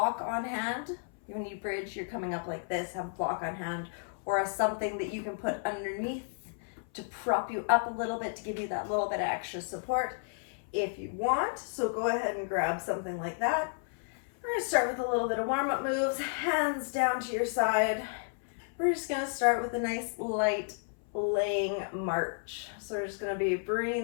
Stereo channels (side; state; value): right; silent; 56 dB below the other